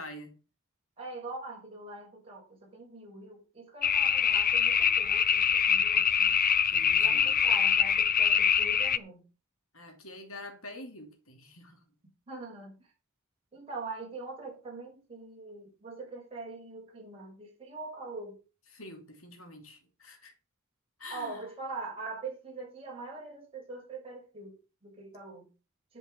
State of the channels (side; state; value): right; quieter; 6.7 dB